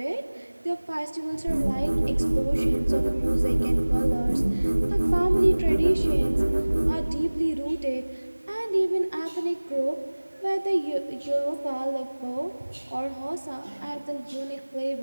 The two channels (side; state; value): both; inverted; correlation -1.00